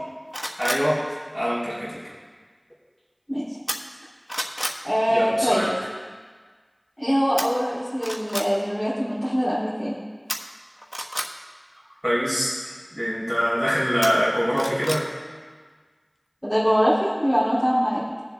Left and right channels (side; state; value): both; identical; correlation 1.00